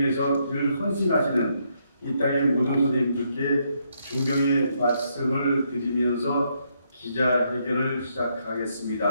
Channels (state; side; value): inverted; both; correlation -0.76